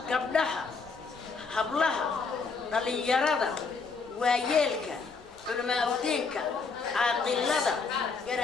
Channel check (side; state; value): right; quieter; 4.8 dB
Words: gabdhaha, hablaha, dhalinyarada, waayeelka, culimaaddeenka, caaqilada,